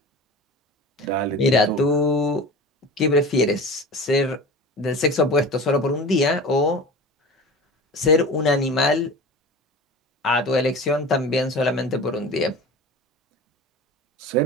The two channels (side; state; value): both; normal; correlation 0.34